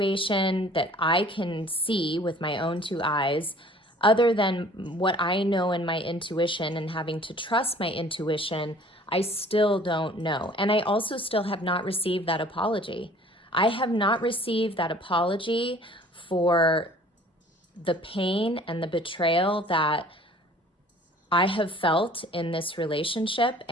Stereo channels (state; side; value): normal; both; correlation 0.51